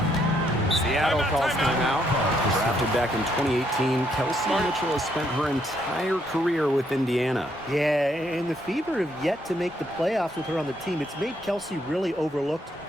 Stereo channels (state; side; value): normal; both; correlation 0.73